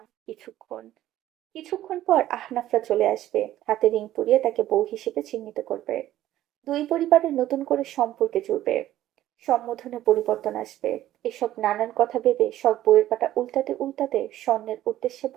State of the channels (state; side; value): quieter; left; 13.6 dB